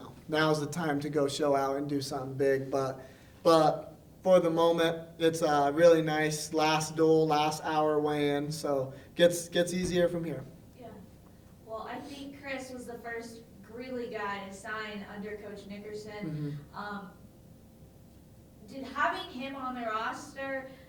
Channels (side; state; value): both; identical; correlation 1.00